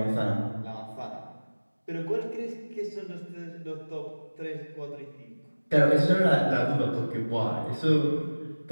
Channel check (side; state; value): both; inverted; correlation -1.00